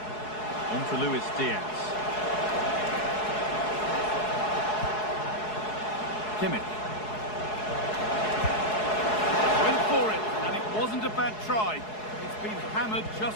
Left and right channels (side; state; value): right; late; 4.7 ms